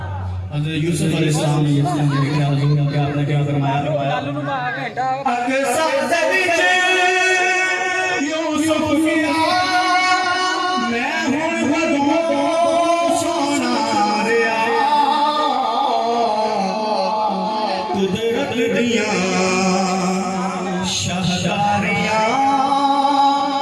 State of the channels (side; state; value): both; identical; correlation 1.00